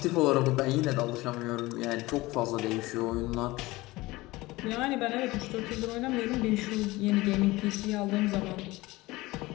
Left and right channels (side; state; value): right; quieter; 20.2 dB